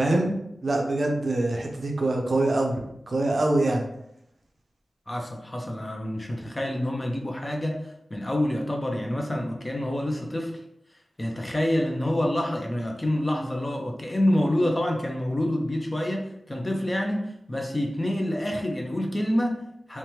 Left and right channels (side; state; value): both; normal; correlation 0.95